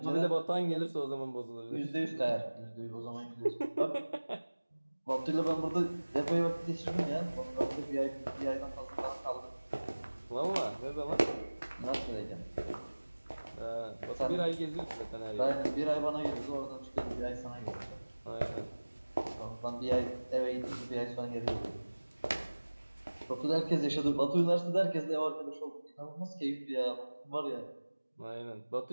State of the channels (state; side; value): inverted; both; correlation -1.00